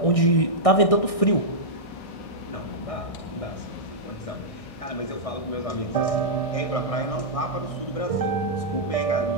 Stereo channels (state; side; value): late; right; 1.6 ms